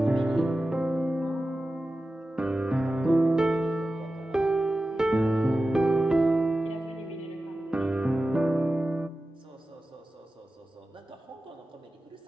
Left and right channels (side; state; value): both; normal; correlation 0.94